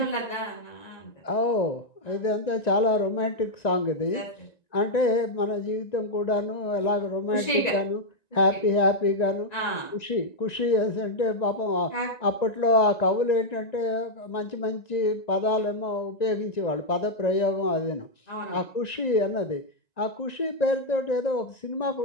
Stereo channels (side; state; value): right; late; 1.9 ms